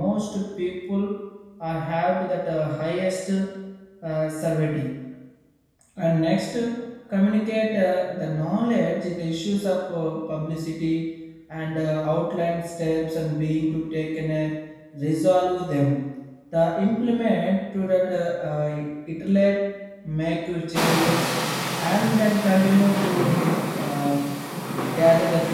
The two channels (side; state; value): both; identical; correlation 1.00